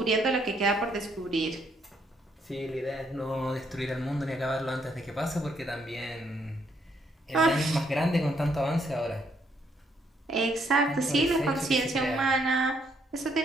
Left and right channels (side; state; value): both; normal; correlation 0.72